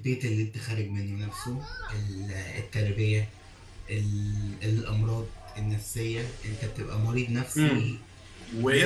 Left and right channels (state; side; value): identical; both; correlation 1.00